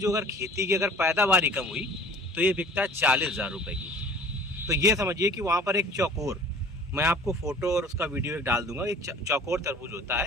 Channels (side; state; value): both; normal; correlation 0.46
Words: अगर खेती की अगर पैदावार कम हुई तो ये बिकता है 40,000 रुपये की। तो ये समझिए कि वहाँ पर एक चौकोर, मैं आपको फोटो और उसका वीडियो एक डाल दूंगा, एक चौकोर तरबूज होता